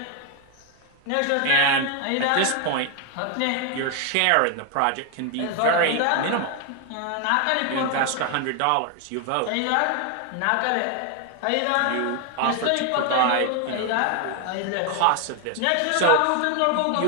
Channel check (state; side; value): different; both; correlation 0.01